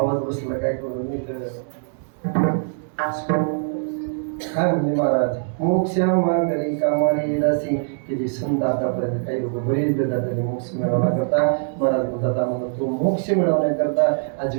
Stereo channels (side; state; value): left; silent; digital silence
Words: बसला काय करून मी तर काय म्हणले महाराज, मोक्ष मागरी कामारी दासी की जी संत आतापर्यंत काही लोक बरेच देतात आणि मोक्ष मिळवण्याकरता महाराज बोलतात आम्हाला तो मोक्ष मिळवण्याकरता